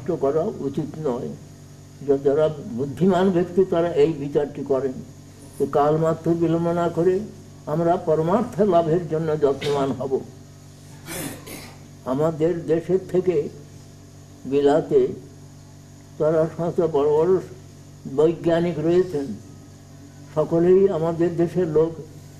করা উচিত নয়। যারা বুদ্ধিমান ব্যক্তি তারা এই বিচারটি করেন যে কালমাত্র বিলম্ব না করে আমরা পরমার্থ লাভের জন্য যত্নবান হব। আমাদের দেশের থেকে বিলাতে তারা সমস্ত বড় বড় বৈজ্ঞানিক রয়েছেন, সকলেই আমাদের দেশের লোক,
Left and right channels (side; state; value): both; identical; correlation 1.00